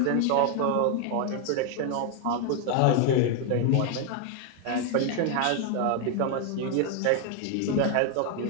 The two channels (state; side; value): different; both; correlation 0.01